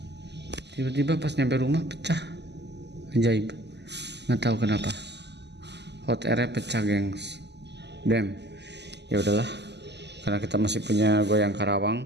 Tiba-tiba pas nyampe rumah pecah. Ajaib. Nggak tahu kenapa. Hot airnya pecah, gengs. Damn. Ya udahlah. Karena kita masih punya goyang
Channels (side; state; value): left; late; 0.50 ms